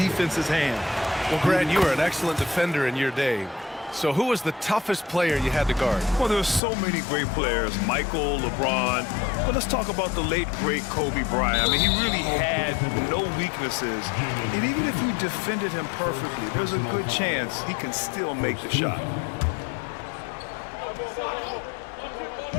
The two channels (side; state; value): right; drops out; at 6.6 s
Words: hand. Well, Grant, you were an excellent defender in your day. So who was the toughest player you had to guard? Well, there's so many great players. Michael, LeBron. But let's talk about the late, great Kobe Bryant. I mean, he really had no weaknesses. And even if you defended him perfectly, there's a good chance he can still make the shot.